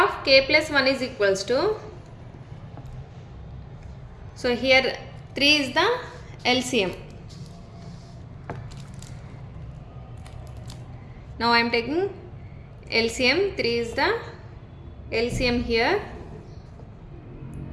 k+1 is equals to, so here 3 is the LCM. Now I am taking LCM. 3 is the LCM here.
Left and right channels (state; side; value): identical; both; correlation 1.00